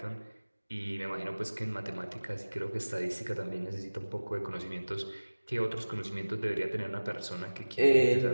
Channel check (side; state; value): both; inverted; correlation -1.00